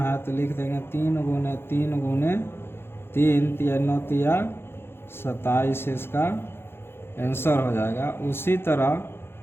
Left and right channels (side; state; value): right; late; 0.11 ms